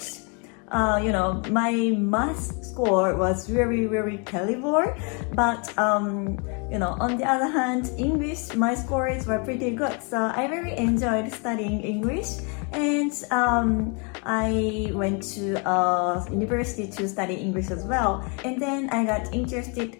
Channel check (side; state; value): right; quieter; 35.2 dB